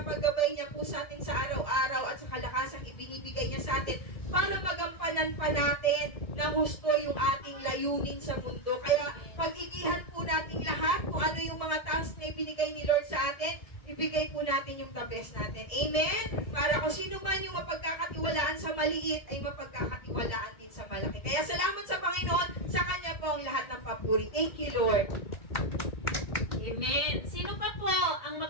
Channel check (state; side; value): late; right; 1.7 ms